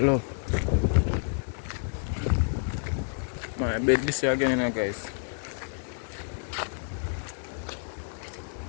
My bed this year again, you know, guys.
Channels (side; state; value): right; silent; 59 dB below the other